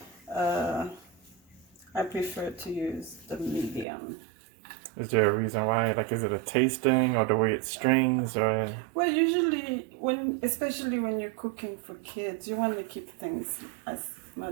prefer to use the medium. Is there a reason why? Like, is it a tasting or the way it strings or? Well, usually especially when you're cooking for kids, you want to keep things as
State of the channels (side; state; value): left; drops out; at 3.9 s